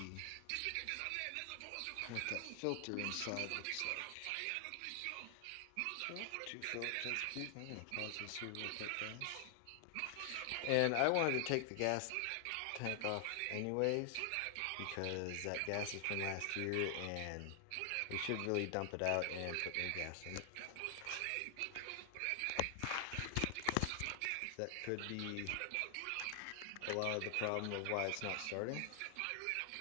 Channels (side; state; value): both; different; correlation 0.00